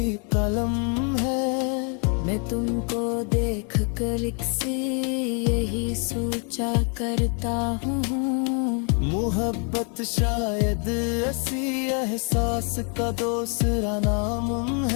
कलम है। मैं तुमको देख कर एक सी यही सोचा करता हूँ, मोहब्बत शायद ऐसी एहसास का दूसरा नाम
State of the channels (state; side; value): quieter; right; 38.7 dB